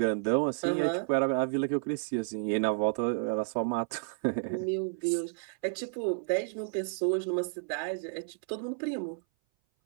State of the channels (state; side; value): silent; left; 57 dB below the other